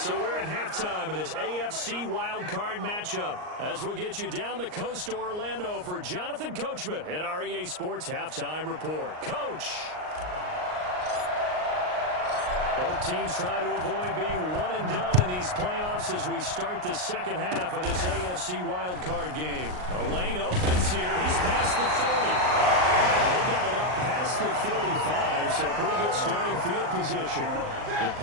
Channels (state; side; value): late; left; 39 ms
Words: we're at halftime of this AFC Wildcard matchup as we'll get you down the coast to Orlando for Jonathan Coachman at our EA Sports Halftime Report. Coach! Both teams try to avoid being one and done in these playoffs as we start the second half of this AFC Wildcard game. The lane opens here. He's past the 30. They got it up past the 35, so pretty good starting field position. The